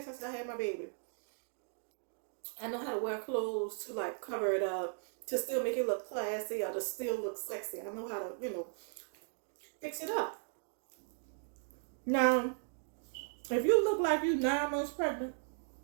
since I had my baby. I know how to wear clothes to like cover it up, to still make it look classy or to still look sexy. I know how to, fix it up. Now, if you look like you 9 months pregnant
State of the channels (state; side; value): silent; left; digital silence